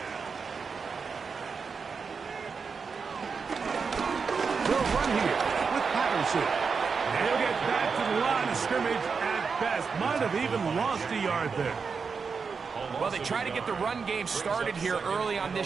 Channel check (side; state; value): left; quieter; 5.4 dB